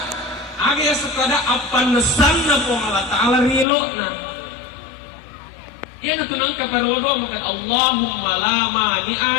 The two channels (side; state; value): right; drops out; at 3.7 s